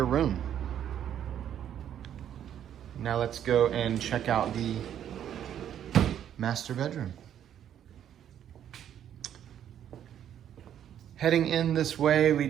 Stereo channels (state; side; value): quieter; left; 10.1 dB